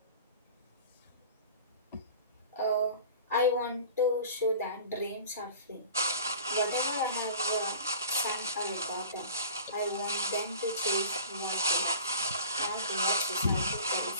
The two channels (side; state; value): both; inverted; correlation -0.41